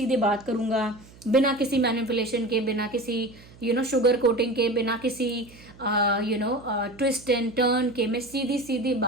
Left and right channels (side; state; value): right; noise; hum, 23 dB below the sound